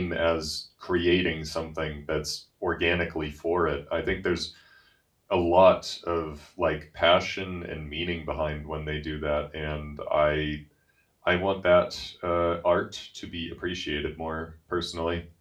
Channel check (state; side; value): identical; both; correlation 1.00